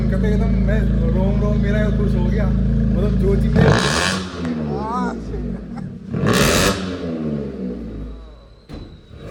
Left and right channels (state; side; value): identical; both; correlation 1.00